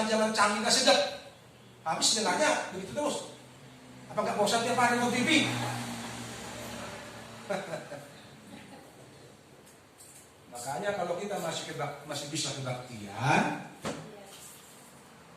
canggih gak sedap. Habis nilainya begitu terus. Apa gak bosan tiap hari nonton TV? Makanya kalau kita masih bisa kebaktian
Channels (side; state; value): both; identical; correlation 1.00